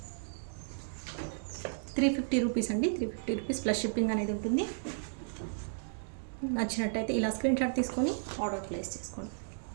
350 రూపీస్ అండి. 350 రూపీస్ ప్లస్ షిప్పింగ్ అనేది ఉంటుంది. నచ్చినట్టయితే ఇలా స్క్రీన్ షాట్ తీసుకొని ఆర్డర్ ప్లేస్ చేసుకోండి.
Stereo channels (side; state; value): left; silent; 55 dB below the other